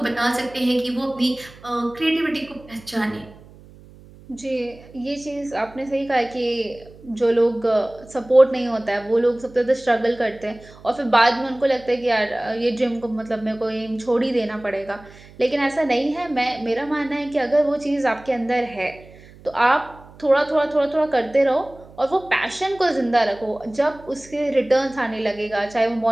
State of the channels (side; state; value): right; noise; hum, 22 dB below the sound